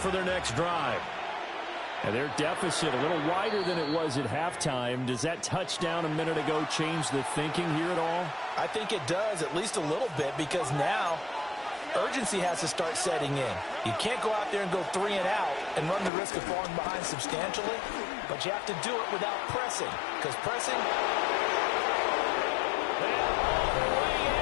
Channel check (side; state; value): right; drops out; at 16.1 s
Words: their next drive. And their deficit a little wider than it was at halftime. Does that touchdown a minute ago change the thinking here at all? I think it does, at least a little bit, because now urgency has to start setting in. You can't go out there and go 3 and out and run the risk of falling behind substantially, but you have to do it without pressing, because pressing... And all the way